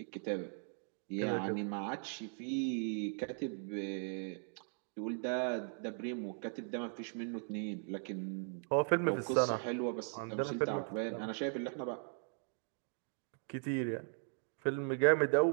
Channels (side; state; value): left; silent; 52 dB below the other